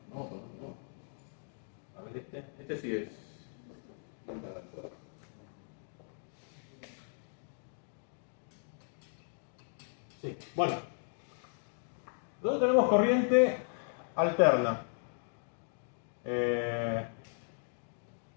No, permanente no. A ver, este sí es. Sí, bueno. Nosotros tenemos corriente alterna.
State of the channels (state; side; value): silent; right; digital silence